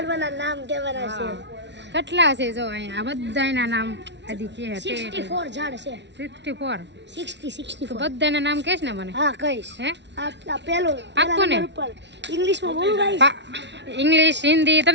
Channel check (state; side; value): late; left; 0.51 ms